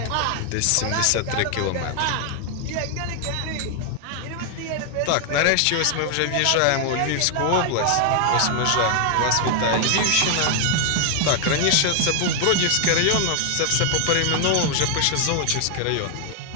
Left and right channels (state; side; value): different; both; correlation 0.00